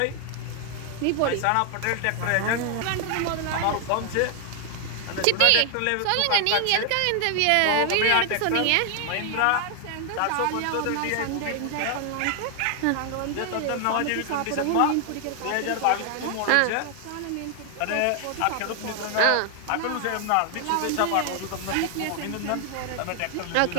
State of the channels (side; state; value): both; different; correlation 0.00